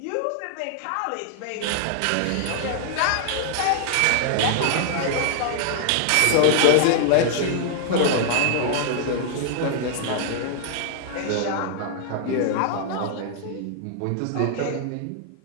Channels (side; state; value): both; different; correlation 0.00